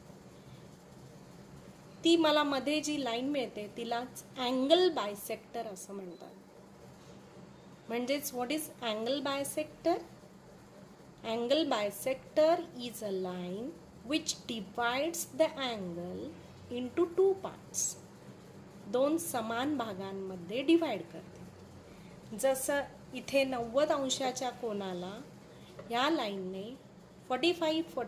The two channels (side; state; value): both; identical; correlation 1.00